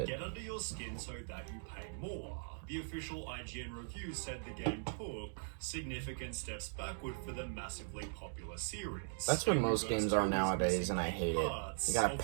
Get under your skin so that you pay more. The official IGN review said the game took significant steps backward for the massively popular series. That's what Angry most Birds games are 2 is nowadays, missing and I hate it. parts You gotta of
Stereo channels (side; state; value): left; silent; digital silence